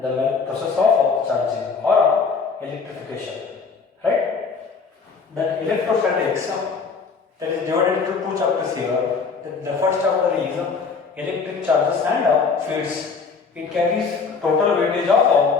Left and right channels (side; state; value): right; quieter; 5.1 dB